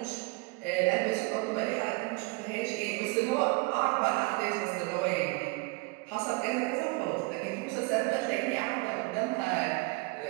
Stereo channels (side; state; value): left; quieter; 26.1 dB